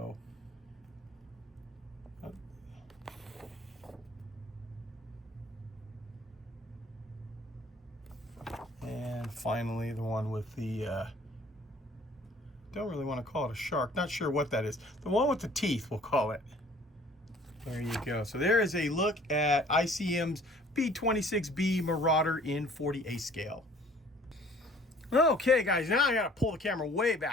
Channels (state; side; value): normal; both; correlation 0.54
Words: and finally the one with the don't really want to call it a shark, not sure what that is. The one with the teeth, we'll call it. There you go. So there is a look at ICM's B-26B Marauder in 40A scale. Okay guys, now I gotta pull the camera way